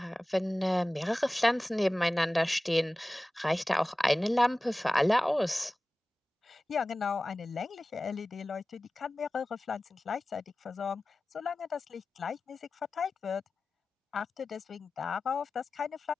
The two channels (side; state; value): both; normal; correlation 0.97